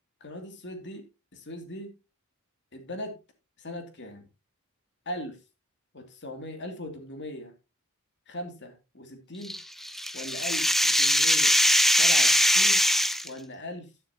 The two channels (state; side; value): normal; both; correlation 0.78